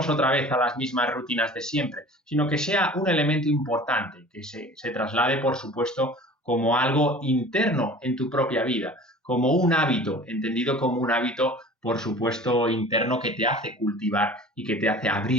otra vez a las mismas rutinas de siempre, sino que sea un elemento importante, que se traslade, por supuesto, como algo interno en tu propia vida, como un hábito, entendido como un hábito, por supuesto, interno que te hace cultivar y que te hace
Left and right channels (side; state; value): both; normal; correlation 0.43